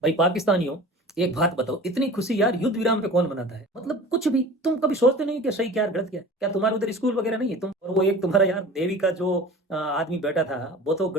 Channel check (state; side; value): normal; both; correlation 0.39